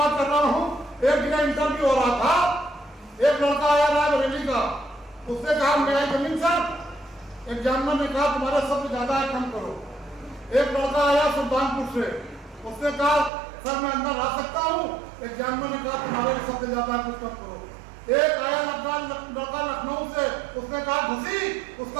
कर रहा हूं। एक जगह इंटरव्यू हो रहा था, एक लड़का आया रायबरेली का, उसने कहा मेरा जमीन सर। एक जानवर ने कहा तुम्हारे शब्द ज्यादा है, कम करो। एक लड़का आया सुल्तानपुर से, उसने कहा सर मैं अंदर आ सकता हूँ। एक जानवर ने कहा तुम्हारे शब्द ज्यादा है, कुछ कम करो। एक आया लड़का लखनऊ से, उसने कहा घुसी,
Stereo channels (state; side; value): drops out; left; at 13.3 s